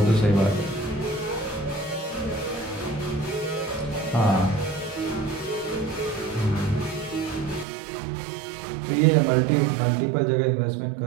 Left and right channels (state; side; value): drops out; left; at 7.7 s